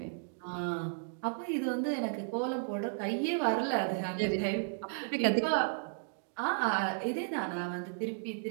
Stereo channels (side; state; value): left; silent; digital silence